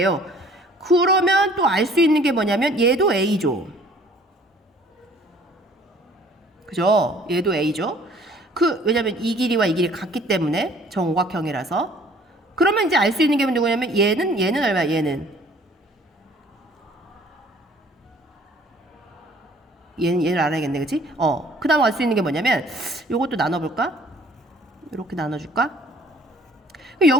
그러면 또 알 수 있는 게 뭐냐면 얘도 A죠. 그죠? 얘도 A죠. 왜냐면 이 길이와 이 길이 같기 때문에 정오각형이라서. 그러면 이제 알 수 있는 게 누구냐면 얘는 얼마야? 얘는 얘를 알아야겠네. 그치? 그 다음 알 수 있는 게 뭐냐면 요것도 나눠볼까? 이렇게 나눠줄까?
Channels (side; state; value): both; normal; correlation 0.55